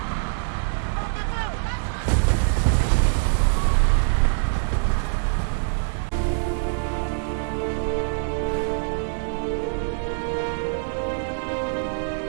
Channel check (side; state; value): left; silent; digital silence